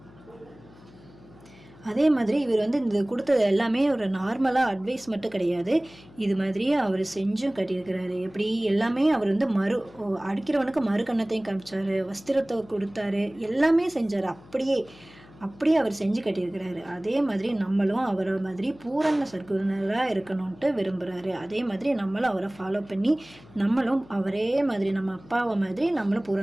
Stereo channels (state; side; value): noise; left; hum, 23 dB below the sound